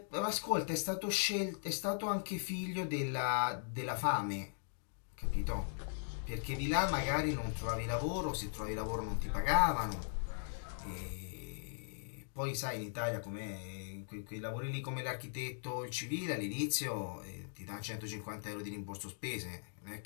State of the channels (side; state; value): right; silent; digital silence